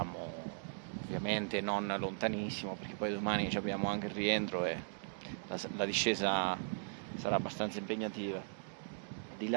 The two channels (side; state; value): left; silent; digital silence